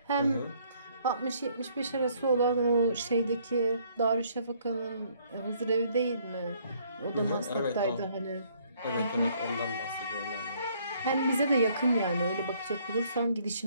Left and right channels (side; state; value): both; inverted; correlation -0.65